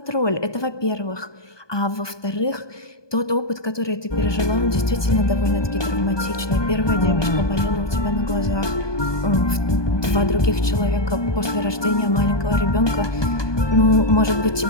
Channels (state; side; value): late; right; 1.2 ms